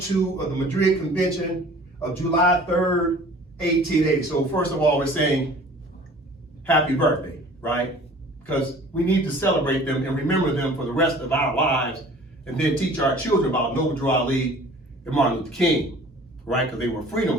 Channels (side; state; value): both; normal; correlation 0.48